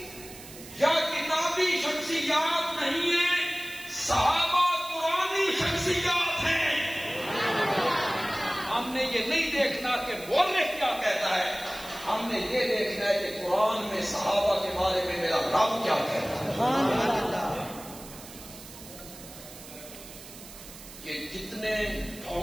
یا کتابی شخصیات نہیں ہیں, صحابہ قرآنی شخصیات ہیں. ہم نے یہ نہیں دیکھنا کہ مورخ کیا کہتا ہے, ہم نے یہ دیکھنا ہے کہ قرآن میں صحابہ کے بارے میں میرا رب کیا کہتا ہے. یہ جتنے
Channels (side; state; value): right; noise; hiss, 16 dB below the sound